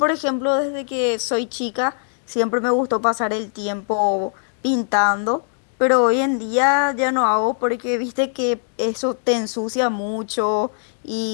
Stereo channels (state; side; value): silent; right; digital silence